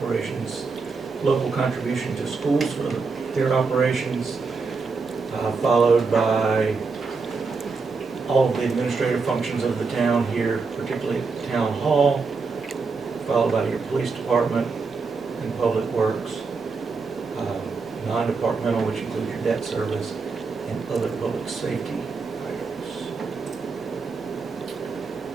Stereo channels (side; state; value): left; quieter; 4.5 dB